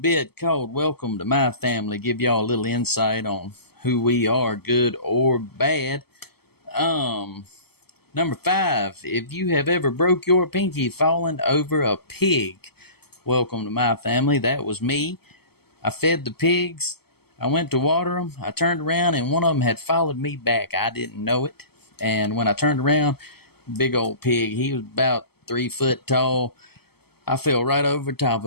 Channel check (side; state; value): right; late; 0.96 ms